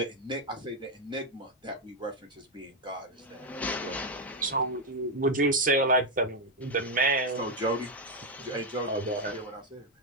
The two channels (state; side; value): normal; both; correlation 0.03